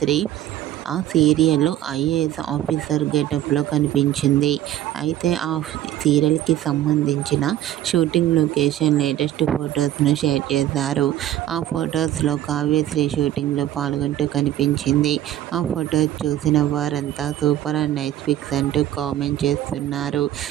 ఆ సీరియల్లో ఐఏఎస్ ఆఫీసర్ గెటప్లో కనిపించింది. అయితే ఆ సీరియల్కి సంబంధించిన షూటింగ్ లొకేషన్ లేటెస్ట్ ఫొటోస్ను షేర్ చేశారు. ఆ ఫొటోస్లో కావ్యశ్రీ షూటింగ్లో పాల్గొంటూ కనిపించింది. ఆ ఫొటోస్ చూసిన వారంతా సూపర్ అండ్ నైస్ పిక్స్ అంటూ కామెంట్ చేస్తున్నారు.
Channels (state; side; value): quieter; left; 12.6 dB